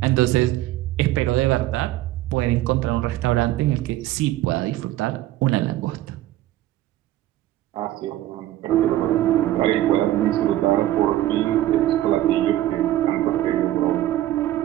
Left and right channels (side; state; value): left; quieter; 14.3 dB